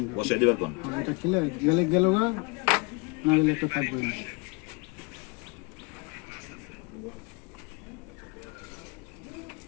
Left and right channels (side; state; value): right; quieter; 29.0 dB